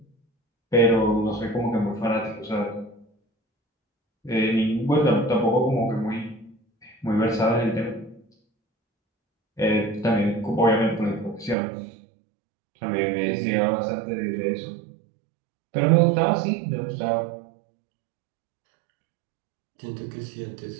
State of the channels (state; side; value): drops out; left; at 11.6 s